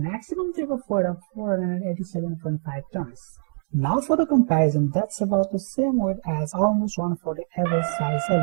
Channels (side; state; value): left; silent; digital silence